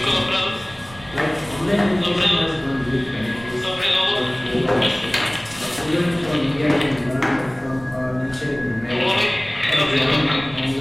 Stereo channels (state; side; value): noise; right; rumble, 21 dB below the sound